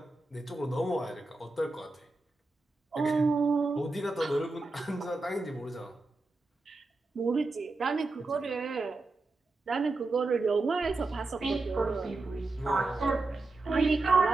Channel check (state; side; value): quieter; left; 3.3 dB